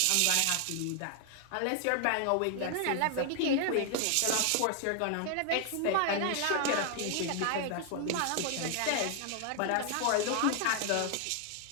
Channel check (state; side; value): different; both; correlation 0.00